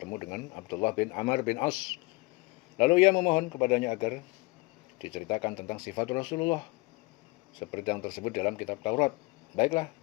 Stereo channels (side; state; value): right; quieter; 24.9 dB